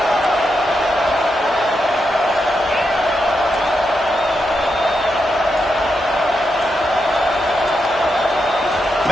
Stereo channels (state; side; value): normal; both; correlation 0.84